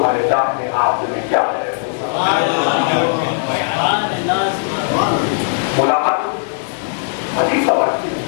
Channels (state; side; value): silent; right; digital silence